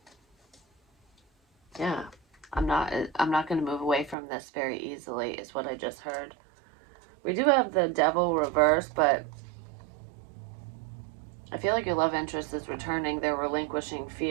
Yeah. I'm not going to move away from this very easily, is what I just heard. We do have the devil reverse, but I feel like your love interest is returning. They're relinquishing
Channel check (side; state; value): left; drops out; at 4.2 s